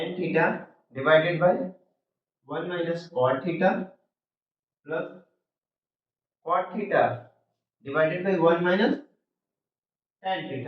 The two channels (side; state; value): both; identical; correlation 1.00